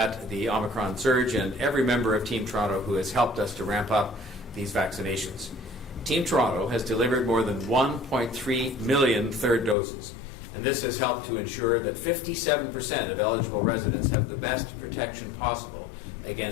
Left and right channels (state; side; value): drops out; right; at 9.8 s